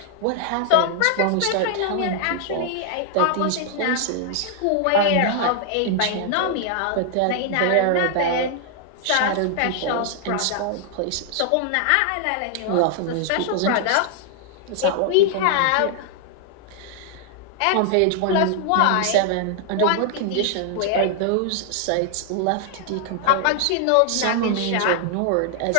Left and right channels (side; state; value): both; different; correlation 0.00